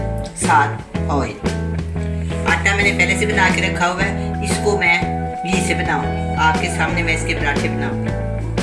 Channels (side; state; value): both; identical; correlation 1.00